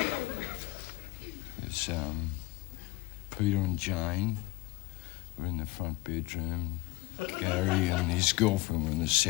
It's, Peter and Jane were in the front bedroom. Gary and his girlfriend were in the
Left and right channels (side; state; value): right; quieter; 22.6 dB